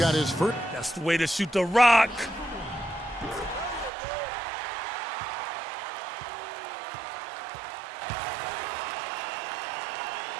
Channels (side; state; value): left; drops out; at 3.9 s